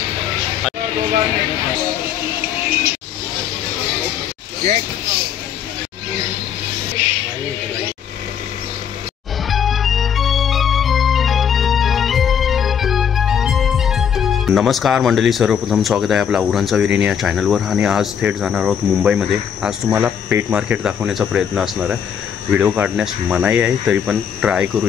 नमस्कार मंडळी, सर्वप्रथम स्वागत आहे आपला उरणचा विरिणी या चॅनलवर. आणि आज थेट जाणार आहोत मुंबईमध्ये. आज तुम्हाला पेट मार्केट दाखवण्याचा प्रयत्न असणार आहे. व्हिडिओ काढण्यास मनाई आहे, तरी पण ट्राय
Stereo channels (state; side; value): quieter; right; 8.2 dB